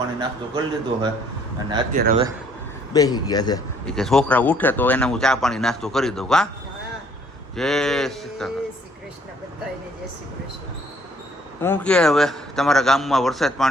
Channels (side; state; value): both; normal; correlation 0.62